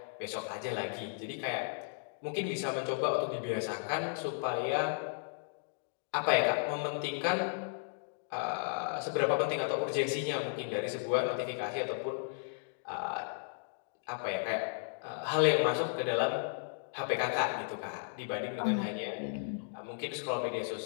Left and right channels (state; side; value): silent; right; digital silence